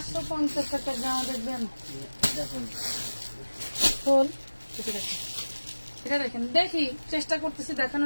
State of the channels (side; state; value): both; inverted; correlation -1.00